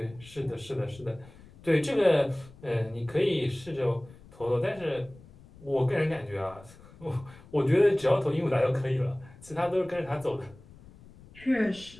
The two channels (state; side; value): noise; left; rumble, 22 dB below the sound